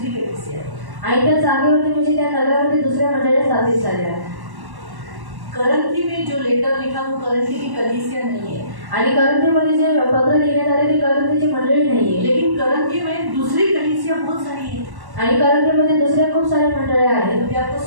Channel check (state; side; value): late; left; 1.1 ms